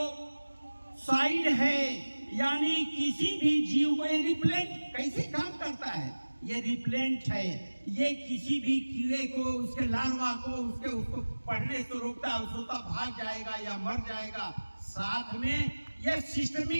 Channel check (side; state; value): both; inverted; correlation -1.00